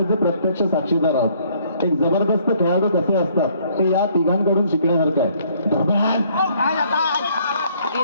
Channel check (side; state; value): both; inverted; correlation -0.63